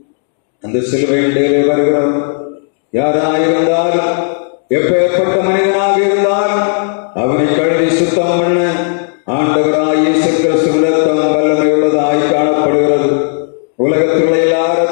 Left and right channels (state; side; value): silent; right; 66 dB below the other